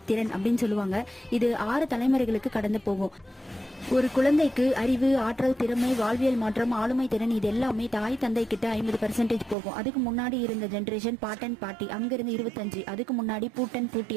திறன் அப்படின்னு சொல்லுவாங்க. இது 6 தலைமுறைகளுக்கு கடந்து போகும். ஒரு குழந்தைக்கு அறிவு, ஆற்றல், திறமை, வாழ்வியல் மாற்றம், ஆளுமை திறன் இது எல்லாமே தாய் தந்தை கிட்ட 50% போகும். அதுக்கு முன்னாடி இருந்த ஜென்ரேஷன் பாட்டன் பாட்டி, அங்கிருந்து 25. அதுக்கு முன்னாடி பூட்டன் பூட்டி,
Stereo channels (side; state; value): left; drops out; at 9.6 s